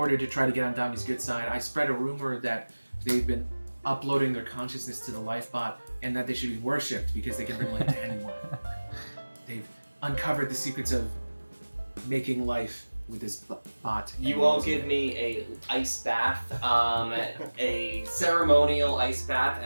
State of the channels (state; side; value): inverted; both; correlation -1.00